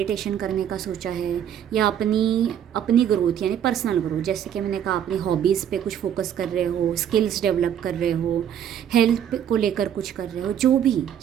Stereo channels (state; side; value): quieter; left; 9.5 dB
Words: करने का सोचा है, या अपनी ग्रोथ यानी पर्सनल ग्रोथ, जैसे कि मैंने कहा अपनी हॉबीज़ पे कुछ फोकस कर रहे हो, स्किल्स डेवलप कर रहे हो, हेल्थ को लेकर कुछ कर रहे हो, जो भी